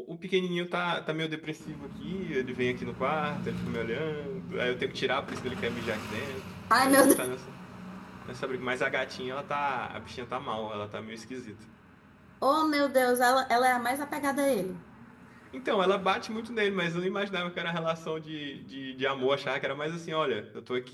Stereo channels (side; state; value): both; identical; correlation 1.00